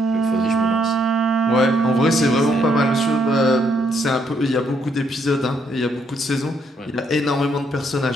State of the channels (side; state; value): both; normal; correlation 0.73